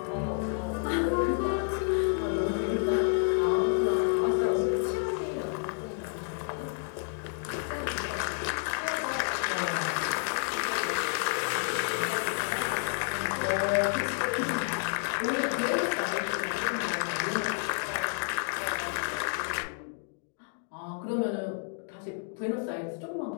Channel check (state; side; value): silent; right; 58 dB below the other